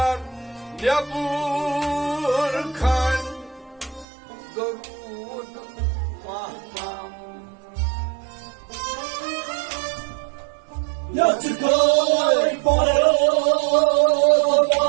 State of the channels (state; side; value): drops out; left; at 4.0 s